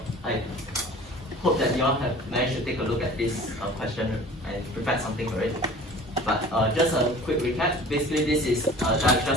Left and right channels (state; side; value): normal; both; correlation 0.44